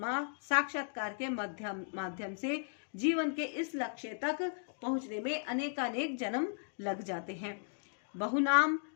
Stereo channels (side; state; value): right; silent; digital silence